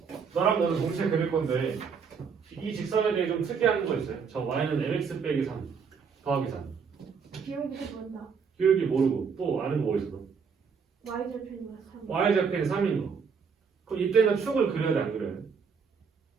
너랑 너는 동시에 그릴 건데 이 직선에 대해 좀 특이한 거 있어요. 저 y는 mx 빼기 3 더하기 3. 기울기 모른다. 기울기 모르고 또 아는 거 뭐 있어? y절편이면 3. y절편이 3인 거. 그럼 이때는 축을 그려야 돼 안 그려야 돼?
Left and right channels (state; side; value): quieter; left; 6.0 dB